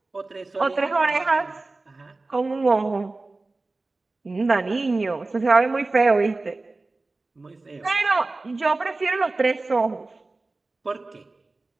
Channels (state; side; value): quieter; left; 3.3 dB